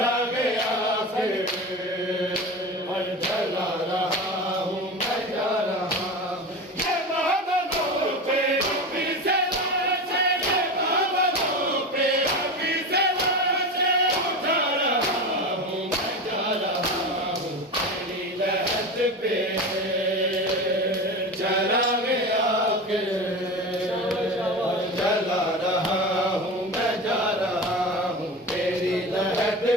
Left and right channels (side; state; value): both; normal; correlation 0.27